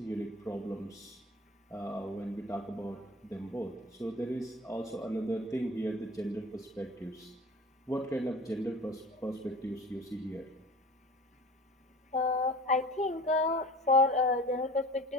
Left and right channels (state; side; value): normal; both; correlation 0.40